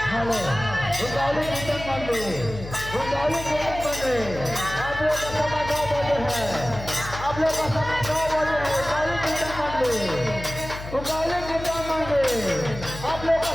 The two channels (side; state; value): left; noise; hum, 11 dB below the sound